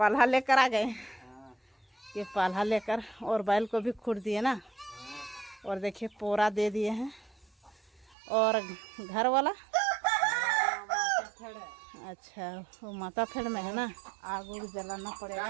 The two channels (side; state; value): left; drops out; at 8.2 s